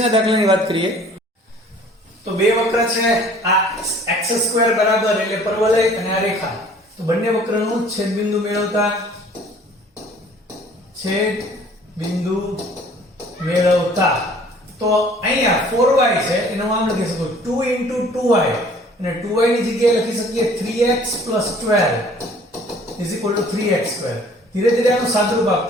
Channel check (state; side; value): normal; both; correlation 0.53